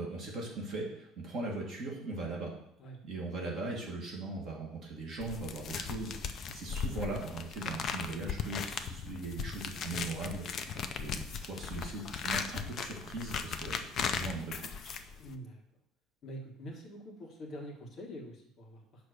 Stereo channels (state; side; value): normal; both; correlation 0.49